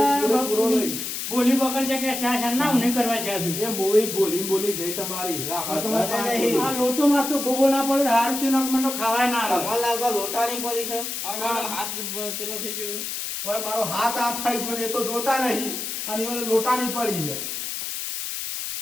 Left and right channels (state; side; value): noise; left; hiss, 4 dB below the sound